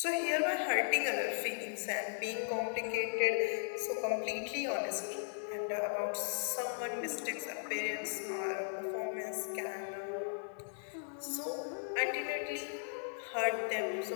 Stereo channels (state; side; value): silent; right; 53 dB below the other